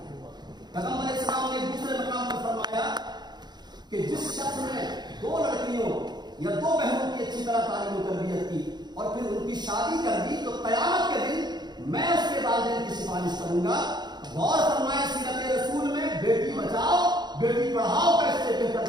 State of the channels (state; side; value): late; left; 0.21 ms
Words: پیغمبر علیہ السلام نے دوسرے مقام پر فرمایا کہ جس شخص نے 2 لڑکیوں یا 2 بہنوں کی اچھی طرح تعلیم و تربیت کی اور پھر ان کی شادی کر دی تو قیامت کے دن میں اس کے والدین کی سفارش کروں گا۔ غور فرمائے سیرت رسول میں بیٹی بچاؤ بیٹی پڑھاؤ کا اس سے